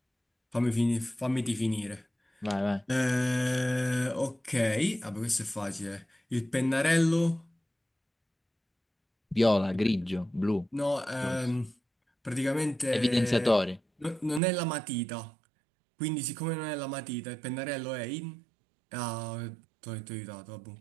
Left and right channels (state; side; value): drops out; left; at 14.4 s